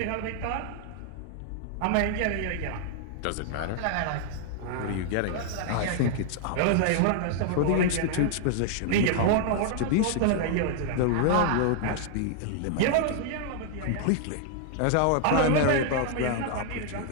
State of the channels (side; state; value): both; different; correlation 0.00